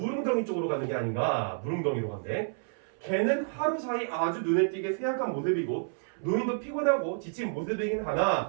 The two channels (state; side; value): silent; left; 58 dB below the other